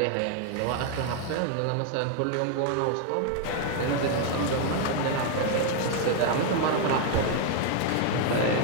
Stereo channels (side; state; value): both; different; correlation 0.00